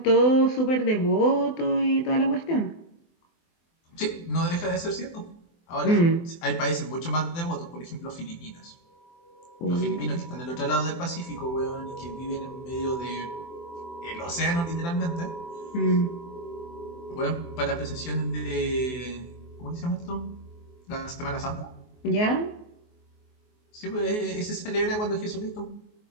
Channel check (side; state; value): right; late; 24 ms